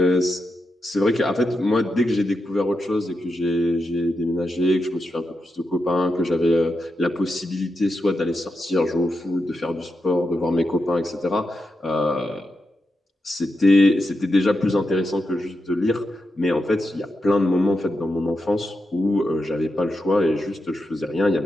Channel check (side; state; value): both; normal; correlation 0.87